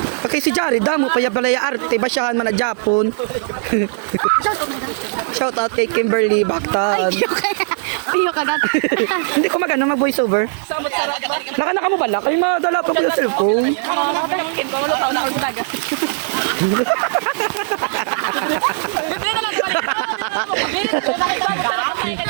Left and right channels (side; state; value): left; silent; digital silence